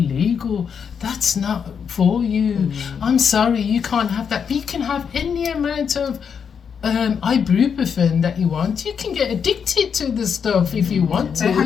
That's not for you. I'm sorry, you can't have that. You can have any amount of ibuprofen that you want. You can get addicted to the stuff if you want to. They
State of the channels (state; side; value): quieter; right; 6.9 dB